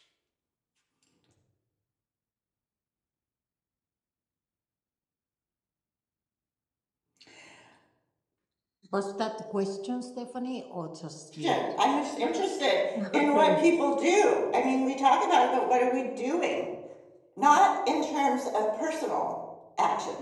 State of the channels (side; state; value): both; identical; correlation 1.00